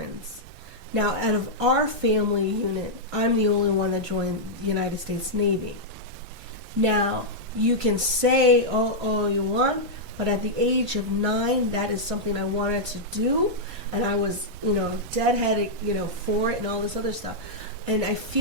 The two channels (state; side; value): late; left; 3.4 ms